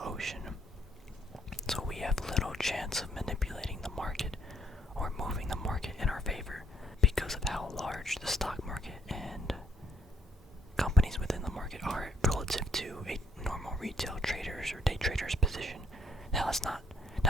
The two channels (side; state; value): both; normal; correlation 0.70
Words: ocean. So we have little chance of manipulating the market or moving the market in our favor because of how large the stock market and companies within the market are relative to a normal retail trader's or day trader's position.